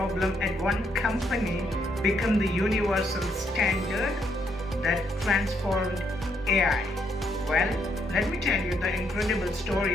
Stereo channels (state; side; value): normal; both; correlation 0.74